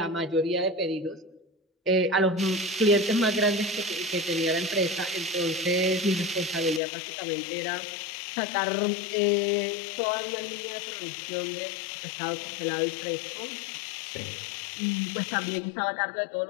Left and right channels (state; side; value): drops out; right; at 6.8 s